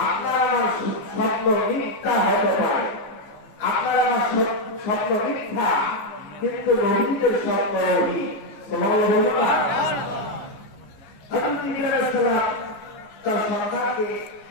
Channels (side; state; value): right; late; 15 ms